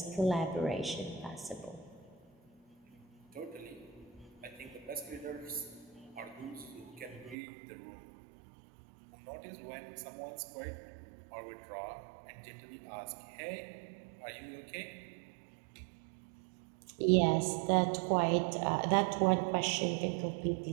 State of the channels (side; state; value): left; drops out; at 7.4 s